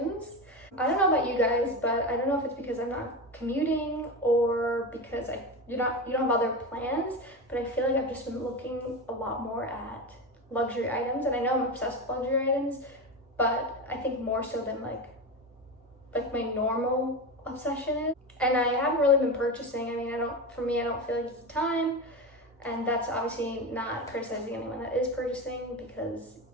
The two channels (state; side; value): normal; both; correlation 0.20